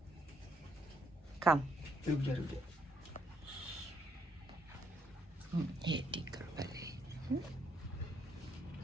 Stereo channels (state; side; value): normal; both; correlation 0.72